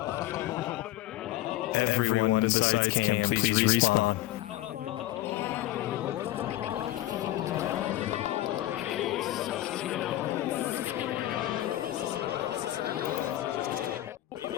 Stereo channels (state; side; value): quieter; right; 15.0 dB